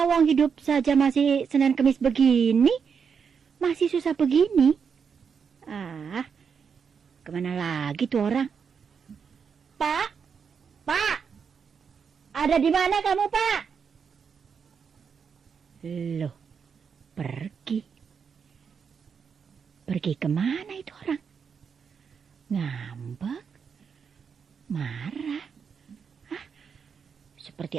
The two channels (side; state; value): left; quieter; 6.4 dB